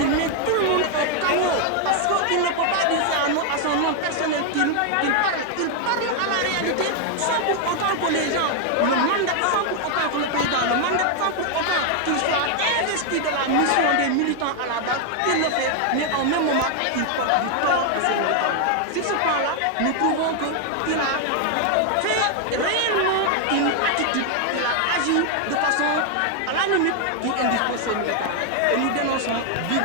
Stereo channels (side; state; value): both; different; correlation 0.00